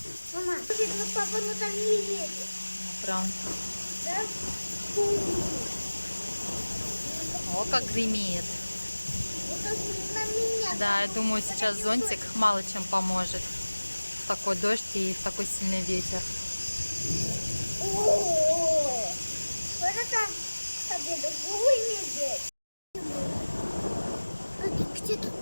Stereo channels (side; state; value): both; inverted; correlation -1.00